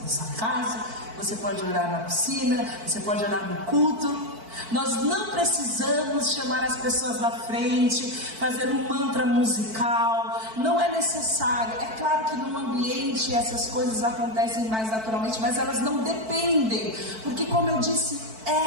casa, você pode orar na piscina, você pode orar no culto. Nós não precisamos chamar as pessoas na frente, fazer um mantra musical, não é necessário. É claro que no ambiente essas coisas acontecem mais naturalmente, mas elas não dependem, porque, como eu disse,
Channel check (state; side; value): late; left; 4.5 ms